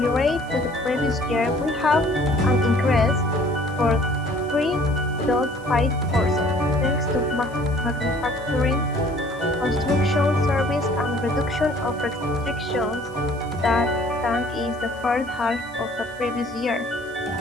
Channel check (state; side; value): noise; left; hiss, 27 dB below the sound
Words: to the previous year, will have an increase for 3.5%, thanks to manufacturing, construction, service, and reduction of restrictions that is the first half of the previous year.